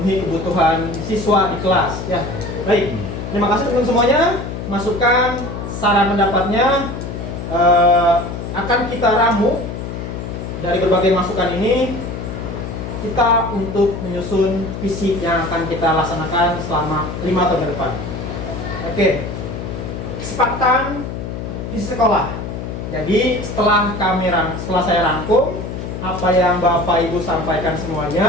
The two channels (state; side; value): noise; left; hum, 7 dB below the sound